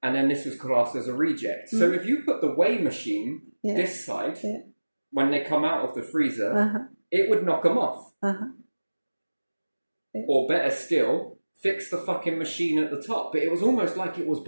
And then this was classed as a reject. So if you put the weigh machine Yeah. this side, Yeah. when they come out of the freezer, Uh-huh. it would knock them off. Uh-huh. Or better still, fix the fucking machine at the top. But it was almost like it was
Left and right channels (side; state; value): both; inverted; correlation -1.00